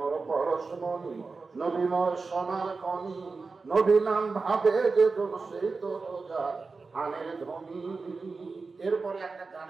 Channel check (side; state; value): left; quieter; 4.2 dB